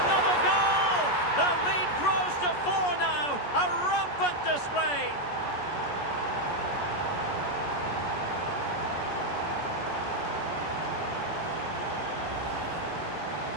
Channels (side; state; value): right; late; 14 ms